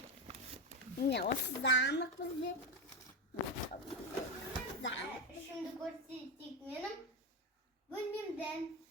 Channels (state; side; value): normal; both; correlation 0.12